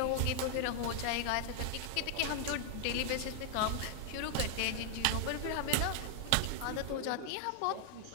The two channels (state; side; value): different; both; correlation 0.00